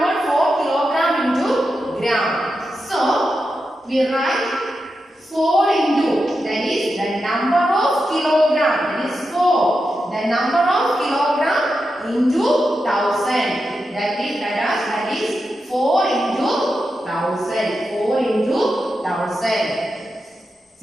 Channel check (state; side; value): normal; both; correlation 0.88